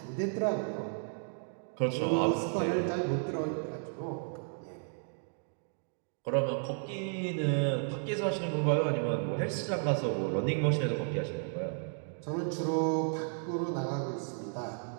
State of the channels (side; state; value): left; silent; 56 dB below the other